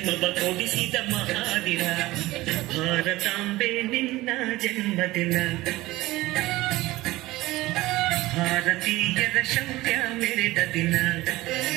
ಕೊಡಿಸಿದ ಮಹಾದಿನ ಭಾರತಾಂಬೆ ನಿನ್ನ ಜನ್ಮದಿನ ಭಾರತೀಯರ ಶೌರ್ಯ ಮೆರೆದ ದಿನ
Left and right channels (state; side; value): quieter; left; 18.5 dB